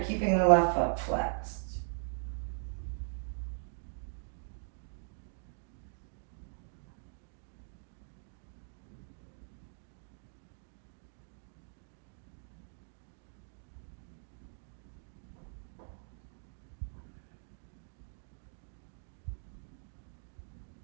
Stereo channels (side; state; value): left; silent; digital silence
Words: keeping the left foot flexed.